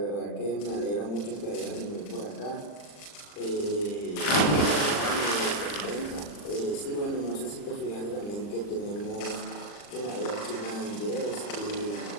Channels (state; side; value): late; right; 40 ms